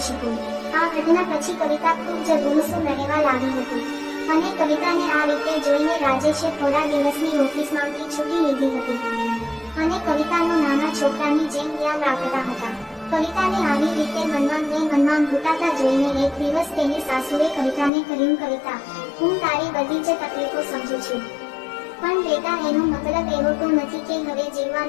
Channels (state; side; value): drops out; right; at 17.9 s